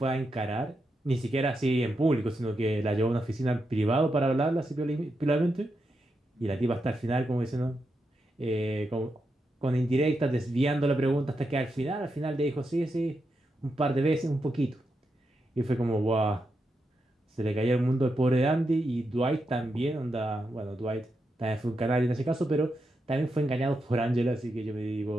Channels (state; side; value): normal; both; correlation 0.85